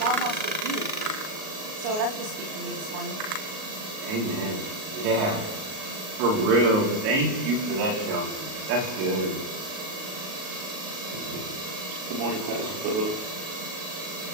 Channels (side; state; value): left; late; 38 ms